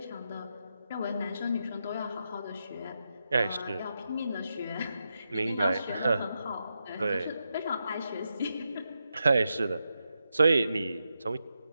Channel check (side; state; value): both; inverted; correlation -0.86